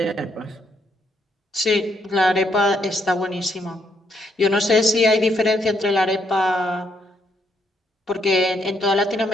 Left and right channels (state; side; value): normal; both; correlation 0.75